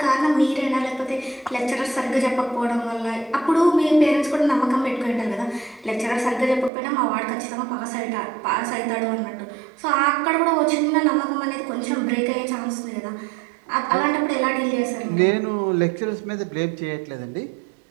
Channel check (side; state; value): left; drops out; at 6.7 s